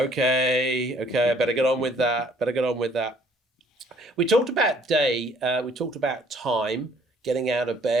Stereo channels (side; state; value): both; normal; correlation 0.60